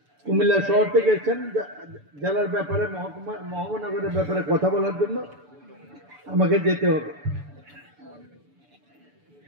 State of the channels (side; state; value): left; late; 6.9 ms